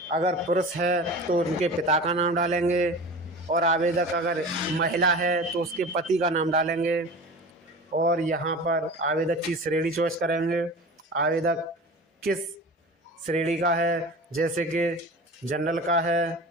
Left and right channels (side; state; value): both; normal; correlation 0.35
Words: अगर पुरुष है तो उनके पिता का नाम डालेंगे और आवेदक अगर महिला है तो उसके पति का नाम डालेंगे। और यहाँ पर आवेदक की श्रेणी चॉइस करेंगे, आवेदक किस श्रेणी का है, जैसे कि जनरल का है,